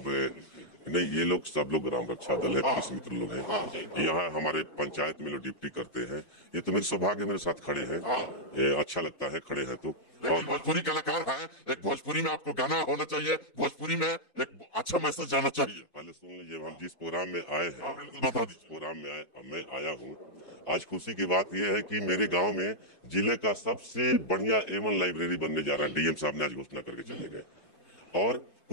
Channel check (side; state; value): right; late; 2.5 ms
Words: नहीं, ये लोग सब लोग ग्राम रक्षा दल है, पुलिस मित्र लोग हैं, यहाँ हमारे पंचायत में लोग ड्यूटी करते हैं। ये तो मेरे सौभाग्य मेरे साथ खड़े हैं, ये अच्छा लगता है खड़े हैं तो। और भोजपुरी कलाकार है, एक भोजपुरी में आपको गाना होना चाहिए, भोजपुरी में एक अच्छा मैसेज जाना चाहिए। पहले सुन लीजिए, हम जिस प्रोग्राम में आए हैं, बता दीजिए प्रोग्राम में मैं आया हूँ। आज खुशी की बात यह है कि मेरे गांव में जिले का सबसे बढ़िया A1 लाइब्रेरी बनने जा रहा है। डीएम साहब ने आज घोषणा करके चले गए। और